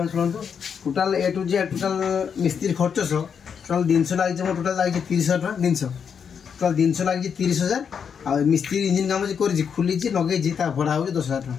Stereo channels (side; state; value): right; quieter; 7.0 dB